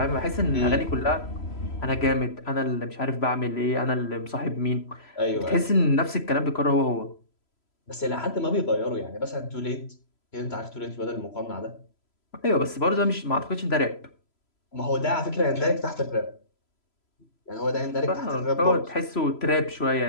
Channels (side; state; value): right; late; 3.0 ms